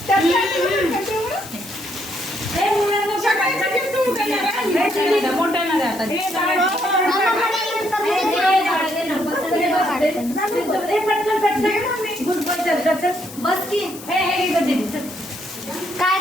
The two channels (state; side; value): noise; left; hiss, 15 dB below the sound